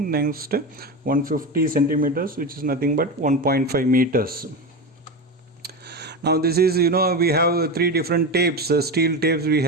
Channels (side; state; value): both; normal; correlation 0.20